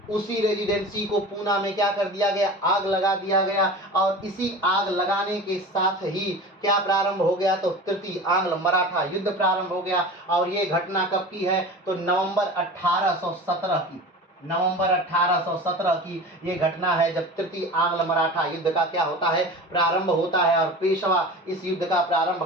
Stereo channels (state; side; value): normal; both; correlation 0.34